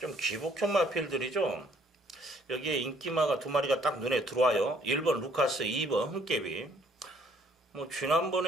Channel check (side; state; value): both; normal; correlation 0.63